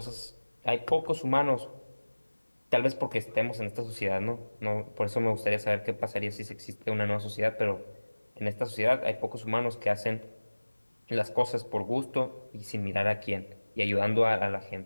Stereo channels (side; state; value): both; inverted; correlation -1.00